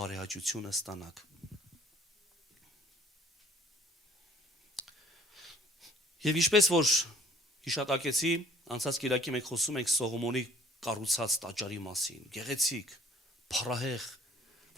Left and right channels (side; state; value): both; normal; correlation 0.57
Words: ստանաք։ Եվ ինչպես որ հիշատակեցի, անցած Կիրակի մենք խոսում ենք Սողոմոնի կառուցած տաճարի մասին, գեղեցիկ, փառահեղ,